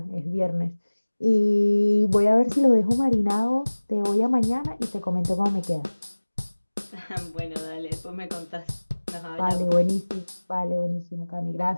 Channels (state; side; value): inverted; both; correlation -1.00